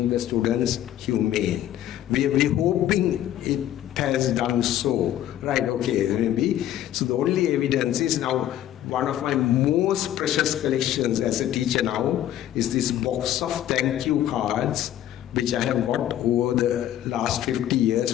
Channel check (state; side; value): quieter; right; 12.1 dB